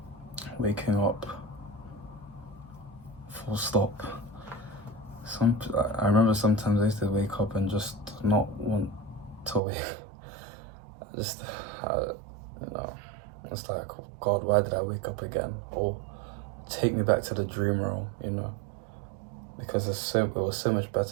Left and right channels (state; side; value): drops out; left; at 9.6 s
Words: waking up, full stop. I remember sometimes I used to wake up and just not want to wake. Just, you know, it's like, oh God, why did I wake up again? Or take me back to the dream realm, you know, because it was so much